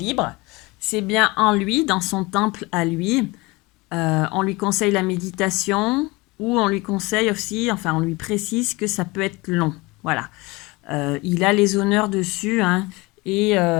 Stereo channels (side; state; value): right; quieter; 23.5 dB